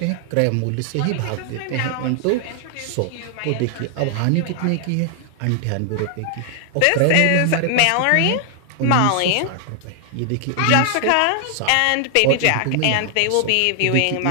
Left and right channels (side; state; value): both; different; correlation 0.00